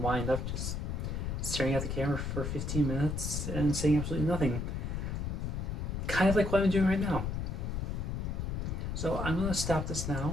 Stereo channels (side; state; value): left; noise; rumble, 2 dB below the sound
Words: up just staring at the camera for 15 minutes and saying absolutely nothing. Kind of like what I'm doing right now. So I'm going to stop this